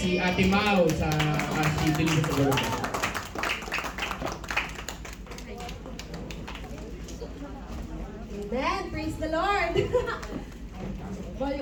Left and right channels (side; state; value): both; identical; correlation 1.00